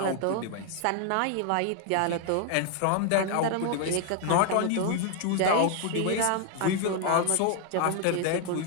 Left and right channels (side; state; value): both; different; correlation 0.00